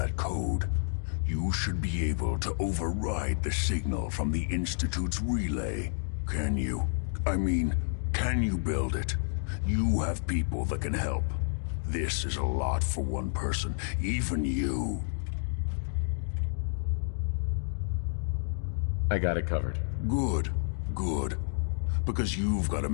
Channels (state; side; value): silent; right; digital silence